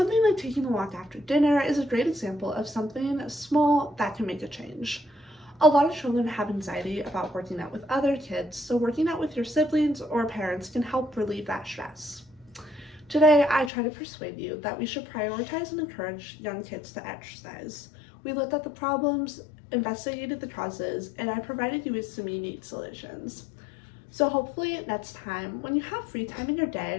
like taking a walk after dinner is a great example of something small that can make a change. A lot of children have anxiety about working out with other kids, so working out with your siblings or parents can help relieve that stress. Today, I try to persuade you that we should prioritize and encourage young kids to exercise. We looked at the problems, investigated the causes, and I provided you with some unique solutions. So hopefully next time, when you have free time in your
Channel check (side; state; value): right; drops out; at 13.7 s